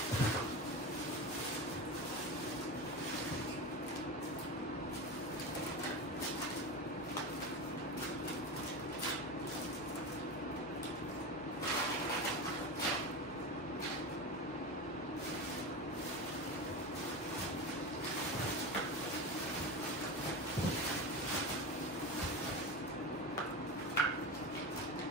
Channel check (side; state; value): both; normal; correlation 0.23